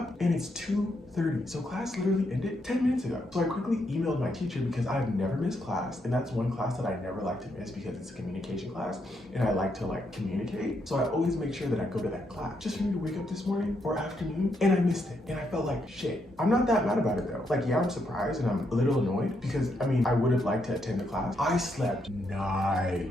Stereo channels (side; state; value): both; normal; correlation 0.78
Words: and it's 2:30. So class literally ended 10 minutes ago. So I quickly emailed my teacher because I've never missed class, and that's one class that I never like to miss because it's a communication class and I like to communicate. So I always make sure that I go to that class. Just for me to wake up this morning or afternoon and I missed it and I felt like shit. I'm not that mad about it though. Like, yeah, I'm surprised and I'm a little annoyed because I mean, I would have liked to attend the class. I slept